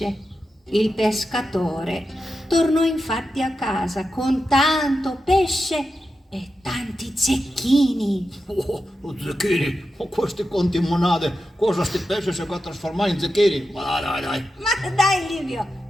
Il pescatore tornò infatti a casa con tanto pesce e tanti zecchini. Oh, zecchini, questi conti monade, cosa sti pesce si può trasformare in zecchini? Ma dai. Ma dai Livio,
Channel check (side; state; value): both; normal; correlation 0.90